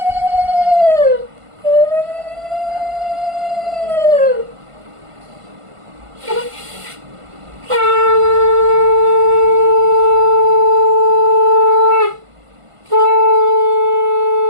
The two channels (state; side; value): late; left; 1.5 ms